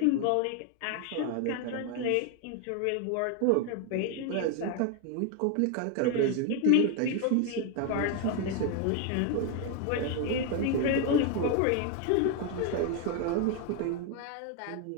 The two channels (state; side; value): different; both; correlation 0.01